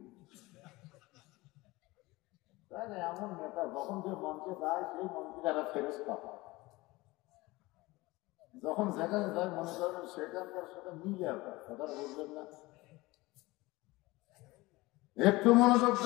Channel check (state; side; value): quieter; right; 21.0 dB